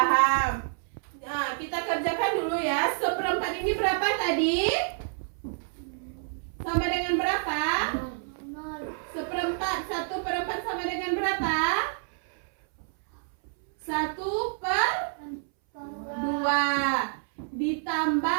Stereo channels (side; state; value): left; silent; 59 dB below the other